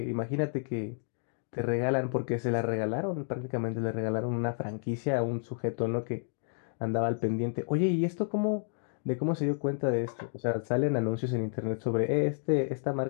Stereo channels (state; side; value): silent; right; digital silence